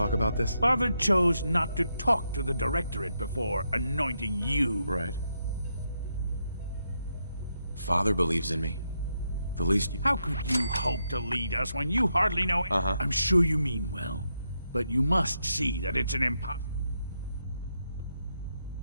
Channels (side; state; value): both; inverted; correlation -0.82